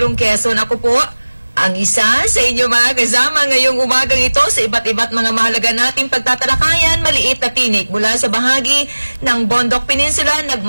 Quezon. Ako po, ang isa sa inyo mga kasama ngayong umagang ito sa iba't mga mahalaga nating pagtatalakayan, maliit na tinik mula sa bahagi ng Bondok Peninsula,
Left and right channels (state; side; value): inverted; both; correlation -1.00